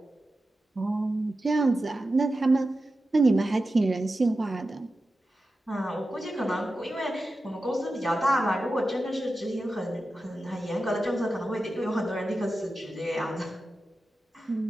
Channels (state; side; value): normal; both; correlation 0.92